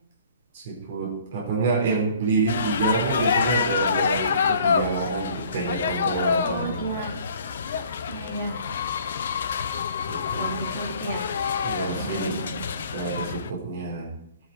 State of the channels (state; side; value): inverted; both; correlation -0.53